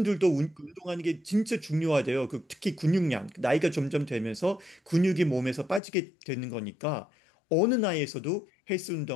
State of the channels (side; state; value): right; drops out; at 5.8 s